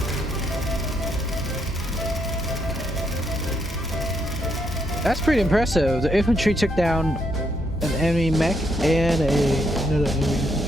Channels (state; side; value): normal; both; correlation 0.76